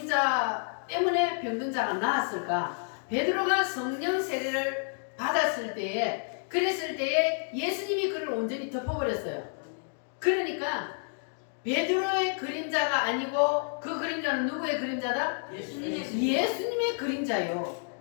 때문에 병든 자가 나았을까? 베드로가 성령 세례를 받았을 때에, 그랬을 때에 예수님이 그를 온전히 덮어버렸어요. 그러니까 베드로의 그림자가 아니고 그 그림자는 누구의 그림자다? 예수님의 그림자요.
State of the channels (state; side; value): silent; right; 55 dB below the other